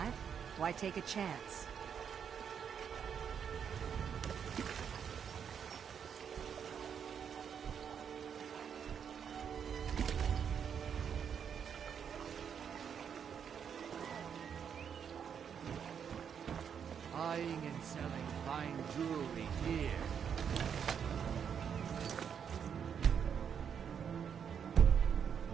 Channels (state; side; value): quieter; left; 7.6 dB